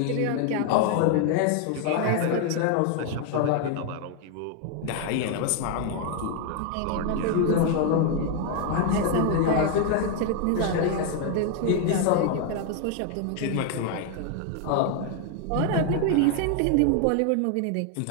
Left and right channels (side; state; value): both; different; correlation 0.00